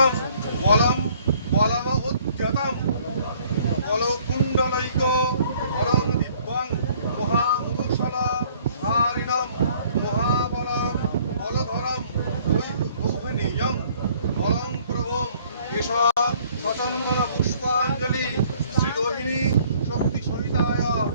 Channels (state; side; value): inverted; both; correlation -0.59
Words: বলম বলম উদ্যতম বলকুণ্ডলৈক হরং দিব্যং মহামূষল ধারিণম মহাবলং বলধরম গৌহনীয়ং বলং প্রভুম এষ সচন্দন পুষ্পাঞ্জলি শ্রী রোহিণী শক্তি সহিতায়